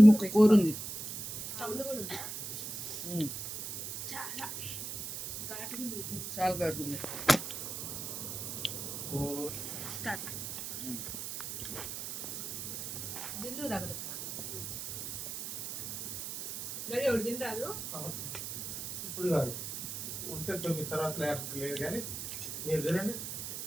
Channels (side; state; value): right; noise; hiss, 6 dB below the sound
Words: ముక్క కూర ఉంది. సౌండ్ కూడా ఉందా? చాలా చాలా కడుతుంది. స్టార్ట్ దిండు తగలు గడి ఒకటి తింటారు. ఇప్పుడు కాదు, ఉంటే 9 తర్వాత లేదు కానీ మీరు తినండి.